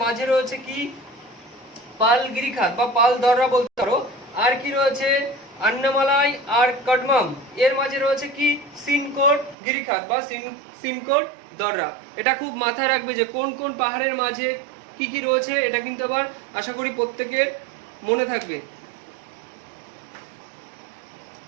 মাঝে রয়েছে কি? পালগিরিখাত বা পালদররা বলতে পারো। আর কি রয়েছে? আন্নামালাই আর কাডমম, এর মাঝে রয়েছে কি? সিনকোট গিরিখাত বা সিনকোট দররা। এটা খুব মাথায় রাখবে যে কোন কোন পাহাড়ের মাঝে কি কি রয়েছে এটা কিন্তু আবার আশা করি প্রত্যেকের মনে থাকবে।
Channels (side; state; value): left; drops out; at 9.6 s